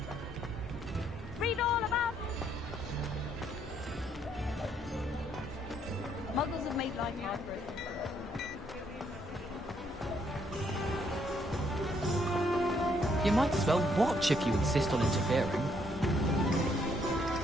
Read all about Muggles have made life hard for us. You might as well watch if you insist on interfering.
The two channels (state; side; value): normal; both; correlation 0.71